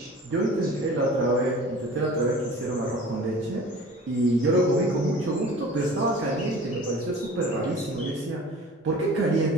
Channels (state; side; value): normal; both; correlation 0.42